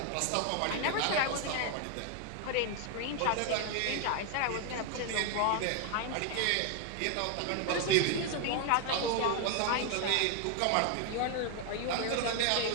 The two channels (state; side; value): different; both; correlation 0.01